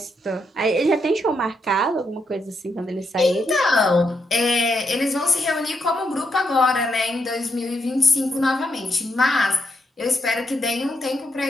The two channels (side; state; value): both; normal; correlation 0.80